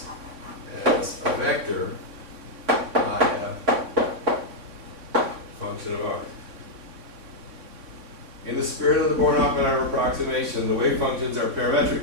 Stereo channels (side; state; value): left; late; 3.6 ms